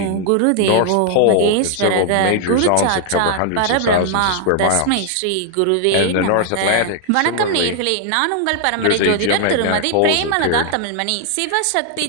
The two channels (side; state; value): both; different; correlation 0.00